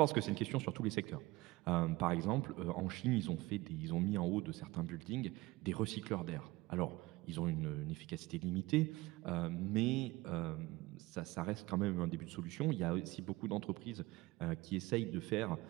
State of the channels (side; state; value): left; quieter; 20.7 dB